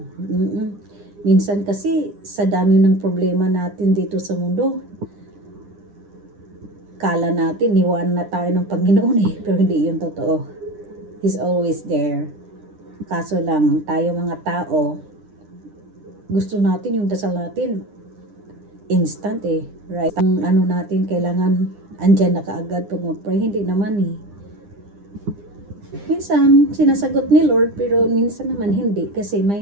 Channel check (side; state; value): left; late; 9.9 ms